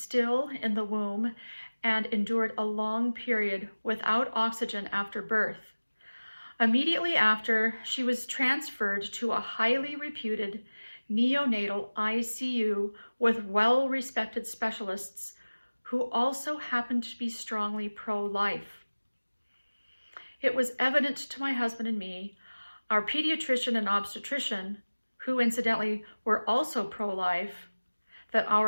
in the womb and endured a long period without oxygen after birth. Immediately after, she was transferred to a highly reputed neonatal ICU with well-respected specialists who also happened to be strongly pro-life. It was evident to my husband and me, our pediatrician and obstetrician, who incidentally were also pro-life, that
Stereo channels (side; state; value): both; inverted; correlation -1.00